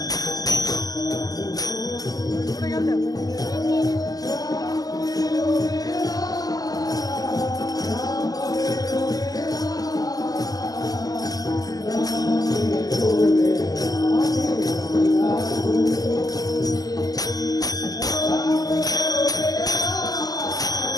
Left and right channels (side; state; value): right; late; 0.18 ms